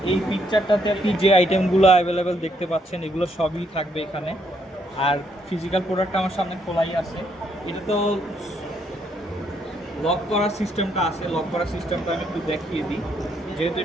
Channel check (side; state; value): both; normal; correlation 0.73